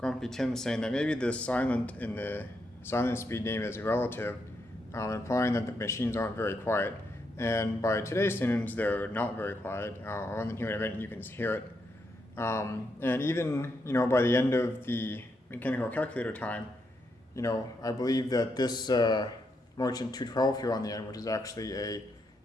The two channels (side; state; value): both; normal; correlation 0.80